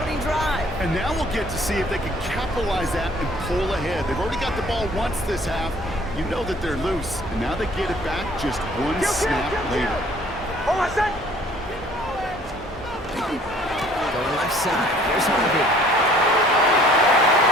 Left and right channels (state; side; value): normal; both; correlation 0.56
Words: drive. And now we'll get to see if they can capitalize that and pull ahead. They've already got the ball once this half. You know that they're loose, and now they get it back just one snap later. Hold on a sec. Going left side. Here's Harvey.